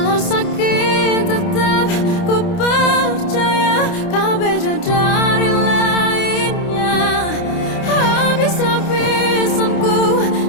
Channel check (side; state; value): right; late; 29 ms